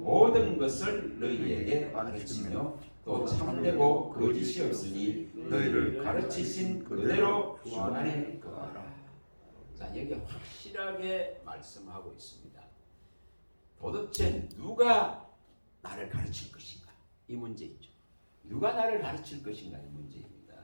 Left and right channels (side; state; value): both; inverted; correlation -1.00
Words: 것을 너희에게 가르치며 또 참되고 거짓이 없으니 너희를 가르치신 그대로 주 안에 거하라. 자, 여기 확실하게 말씀하고 있습니다. 도대체 누가 나를 가르칠 것인가? 이 문제이죠. 누가 나를 가르칠 것인가? 이 문제입니다.